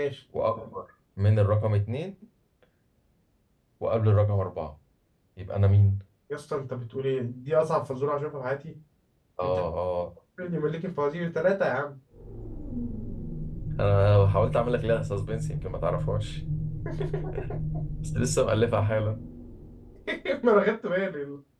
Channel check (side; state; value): both; identical; correlation 1.00